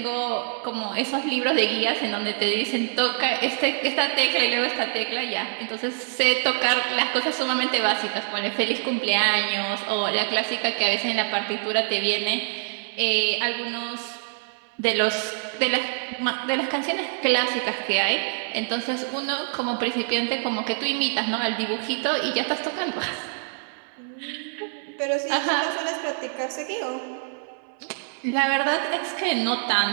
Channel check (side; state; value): left; silent; 62 dB below the other